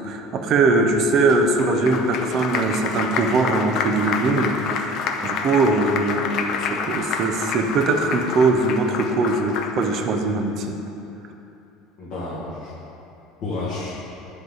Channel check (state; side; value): normal; both; correlation 0.45